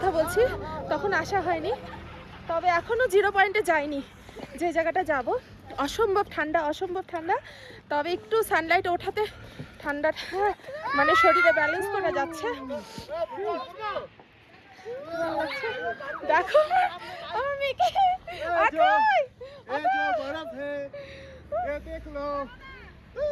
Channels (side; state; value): both; identical; correlation 1.00